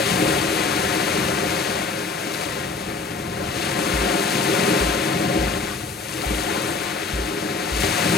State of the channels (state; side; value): quieter; right; 4.1 dB